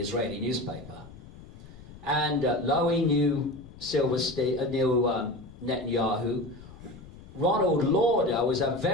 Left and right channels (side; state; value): left; noise; rumble, 18 dB below the sound